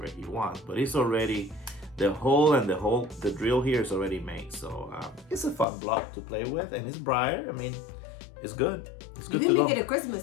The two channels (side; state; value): right; drops out; at 5.7 s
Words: he wants, but it's already the hole and the drill here is already made. So it's a fun block to play with, and it's briar. I mean, it's good. It's You good can to make go. it a